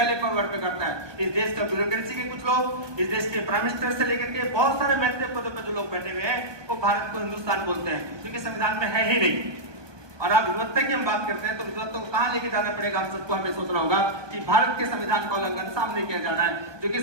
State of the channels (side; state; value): left; late; 1.2 ms